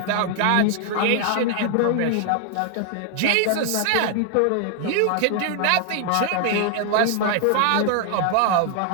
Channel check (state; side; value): different; both; correlation 0.00